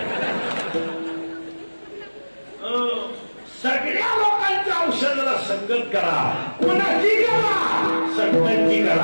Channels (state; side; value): inverted; both; correlation -1.00